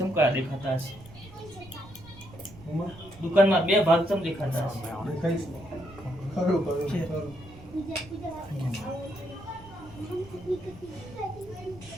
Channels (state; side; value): noise; right; rumble, 19 dB below the sound